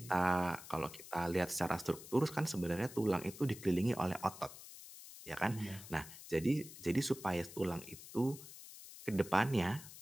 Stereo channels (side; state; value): left; noise; hiss, 15 dB below the sound